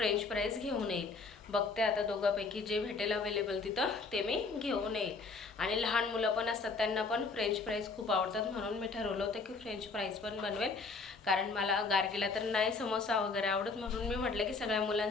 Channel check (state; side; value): quieter; right; 4.1 dB